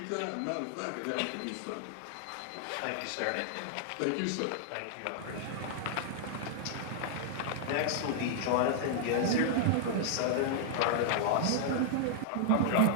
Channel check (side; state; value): both; different; correlation -0.01